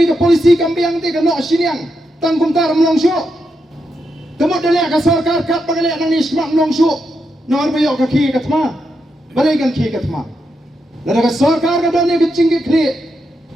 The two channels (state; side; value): normal; both; correlation 0.84